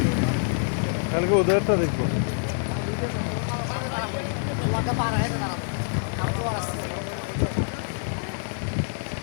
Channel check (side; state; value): right; silent; digital silence